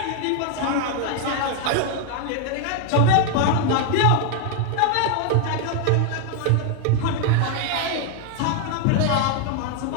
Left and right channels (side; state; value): both; different; correlation 0.00